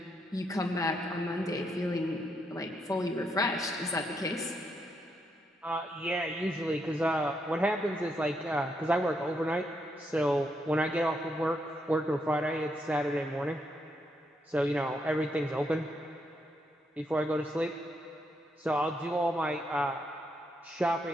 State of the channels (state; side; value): normal; both; correlation 0.78